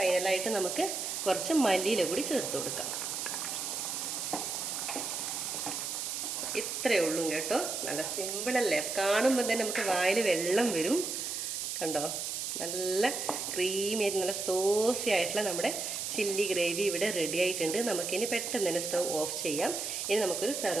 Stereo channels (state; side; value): noise; right; hiss, 3 dB below the sound